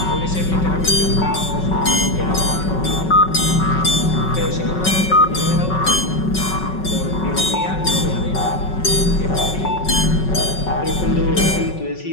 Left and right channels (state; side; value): late; right; 5.4 ms